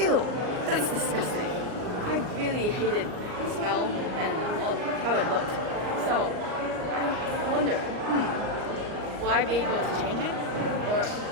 that's disgusting. I really hated the smell and how it looked. So I wondered, will I be able to change it? Or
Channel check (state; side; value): late; left; 38 ms